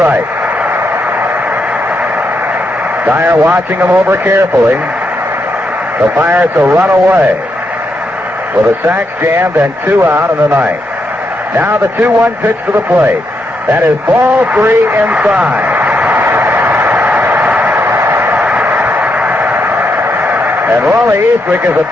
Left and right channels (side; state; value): both; normal; correlation 0.81